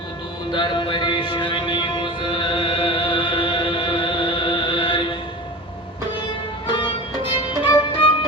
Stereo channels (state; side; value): normal; both; correlation 0.32